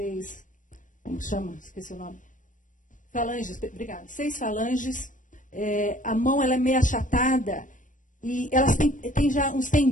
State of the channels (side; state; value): right; late; 0.37 ms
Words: como chama? Esqueci o nome. Falanges, obrigada. 6 falanges, a mão ela é meio achatada, e elas têm já uns